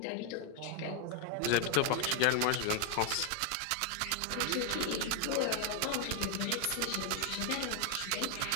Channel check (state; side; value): different; both; correlation 0.01